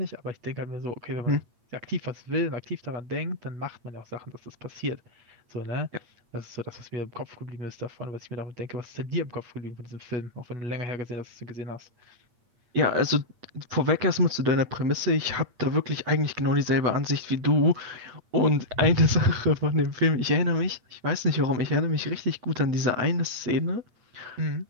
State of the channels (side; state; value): left; late; 8.6 ms